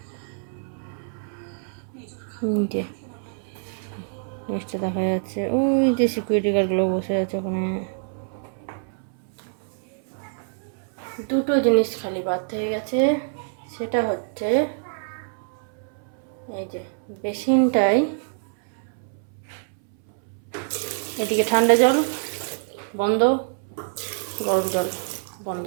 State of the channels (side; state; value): left; silent; 61 dB below the other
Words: নিচে দেখা যাচ্ছে ওই যে সিকিউরিটি গার্ডগুলো বসে আছে ওখানে। দুটো জিনিস খালি বাদ হয়ে গেছে, সেটা হচ্ছে এই যে বেসিনটাই, এদিকে ঠান্ডা জল বন্ধ, গরম জল বন্ধ,